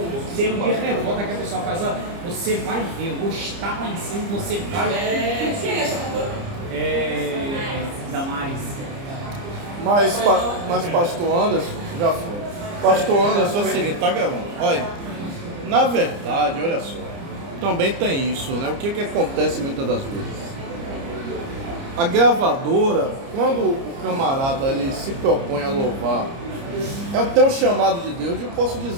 termo de revolta que a pessoa faz. Ó, você vai ver, eu vou estar lá em cima, você vai. Quem é essa cantora? Damares. Mas pastor Anderson, já foi. Pastor Anderson é o seguinte, tá gravando. Olha, na verdade, olha só, também tem isso, né? O que acontece muitas das vezes? A gravadora, quando o camarada ele se propõe a louvar, tem um chamado de Deus, eu posso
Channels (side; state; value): left; late; 30 ms